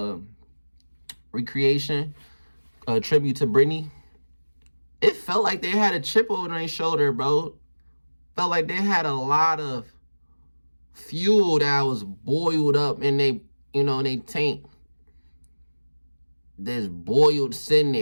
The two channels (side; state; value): both; inverted; correlation -1.00